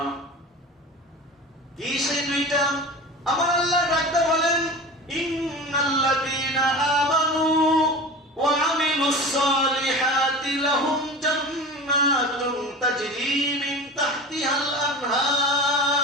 কি সেই দুইটা? আমার আল্লাহ ডাকতে বলেন, ইন্নাল্লাযীনা আমানু ওয়া আমিলুস সালিহাতি লাহুম জান্নাতুন তাজরি মিন তাহতিহাল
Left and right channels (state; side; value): normal; both; correlation 0.33